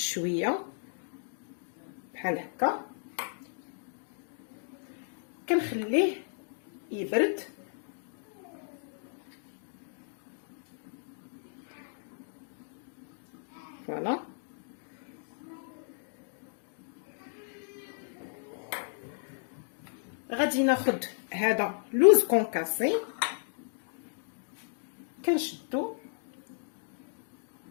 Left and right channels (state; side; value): silent; right; digital silence